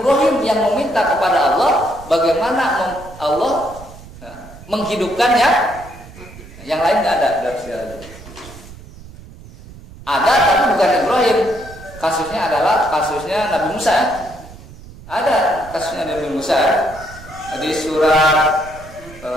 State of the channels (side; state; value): right; noise; rumble, 18 dB below the sound